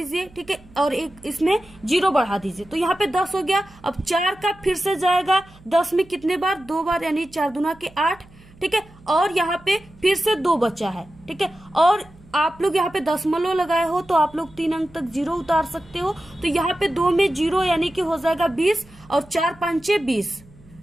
ठीक है, और एक इसमें 0 बढ़ा दीजिए, तो यहाँ पे 10 हो गया। अब 4 का फिर से जाएगा 10 में कितने बार? 2 बार, यानी 4 दूना के 8। ठीक है, और यहाँ पे फिर से 2 बचा है। ठीक है, और आप लोग यहाँ पे दशमलव लगाए हो तो आप लोग 3 अंक तक 0 उतार सकते हो। तो यहाँ पे 2 में 0 यानी कि हो जाएगा 20 और 4 5 20।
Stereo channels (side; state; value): right; noise; hum, 25 dB below the sound